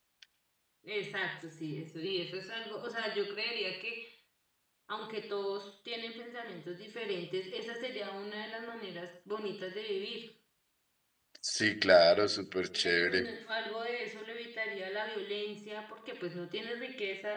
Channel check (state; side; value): identical; both; correlation 1.00